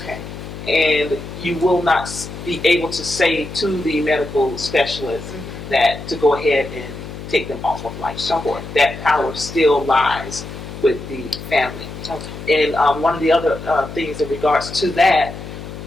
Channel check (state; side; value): noise; left; hum, 11 dB below the sound